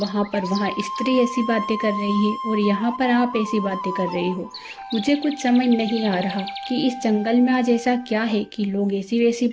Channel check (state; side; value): identical; both; correlation 1.00